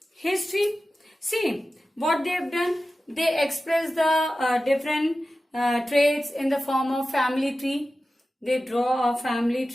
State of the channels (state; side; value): normal; both; correlation 0.94